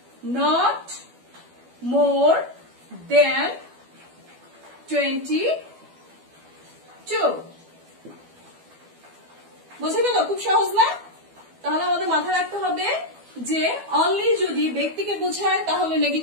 নট মোর দেন 22। বুঝে গেল? খুব সহজ না? তাহলে আমাদের মাথায় রাখতে হবে যে অনলি যদি ব্যক্তিকে বোঝায় তাহলে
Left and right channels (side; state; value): left; late; 12 ms